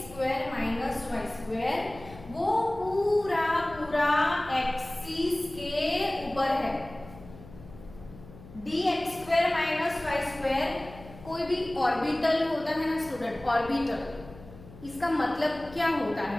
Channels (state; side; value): noise; left; hum, 18 dB below the sound